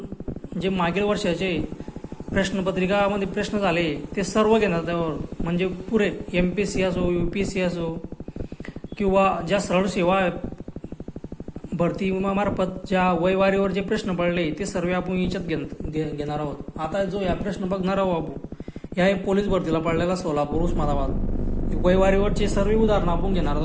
जे मागील वर्षाचे प्रश्नपत्रिकामध्ये प्रश्न झाले ते सर्व घेणार त्यावर, म्हणजे पुरे MPSC असो, UPSC असो किंवा ज्या सरळ सेवा भरती मार्फत ज्या वयवारीवर जे प्रश्न पडले ते सर्व आपण याच्यात घेणार आहोत। आता जो या प्रश्न बघणार आहोत आपण, या पोलीस भरतीला पडलेला सोलापूर उस्मानाबाद वयवारीवरचे सर्व उदाहरणं आपण घेणार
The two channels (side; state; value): both; identical; correlation 1.00